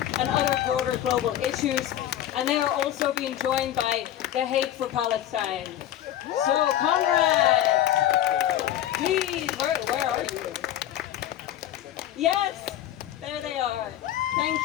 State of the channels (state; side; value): quieter; right; 12.2 dB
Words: and other broader global issues. And they are also being joined by the Hague for Palestine. So, comrades, please, where are you? Yes, there they are. Thank